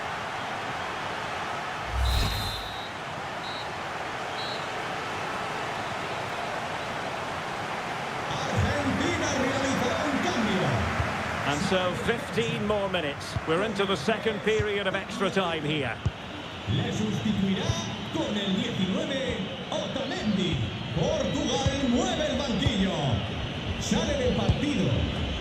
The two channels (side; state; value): both; identical; correlation 1.00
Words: Argentina realizará un cambio. And so 15 more minutes. We're into the second period of extra time here. Le sustituirá con el 19, Otamendi. Portugal mueve el banquillo. Sale del partido